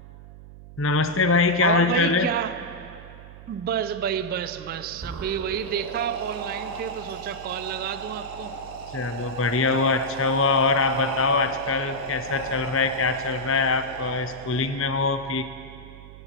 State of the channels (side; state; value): right; noise; hum, 17 dB below the sound